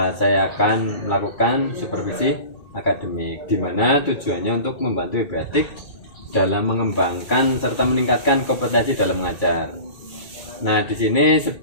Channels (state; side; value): late; right; 2.2 ms